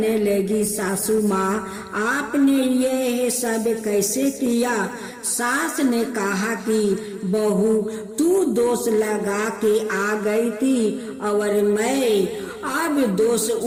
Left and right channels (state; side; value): identical; both; correlation 1.00